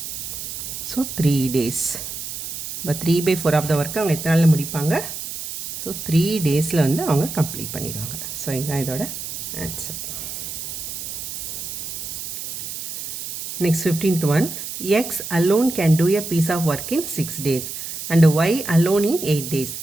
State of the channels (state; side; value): noise; right; hiss, 7 dB below the sound